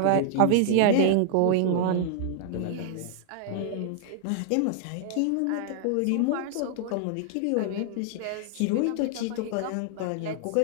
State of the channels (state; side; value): different; both; correlation 0.00